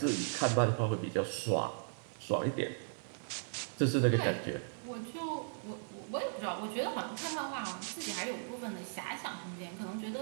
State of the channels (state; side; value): silent; left; digital silence